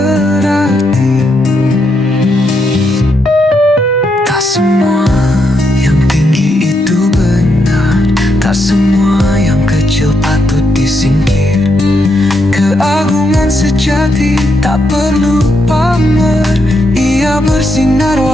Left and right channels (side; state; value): both; normal; correlation 0.80